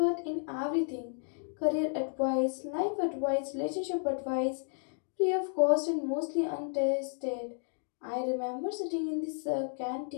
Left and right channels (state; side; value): silent; right; 56 dB below the other